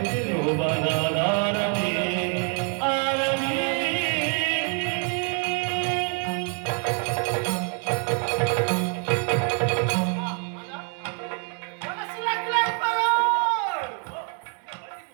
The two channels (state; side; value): quieter; left; 39.5 dB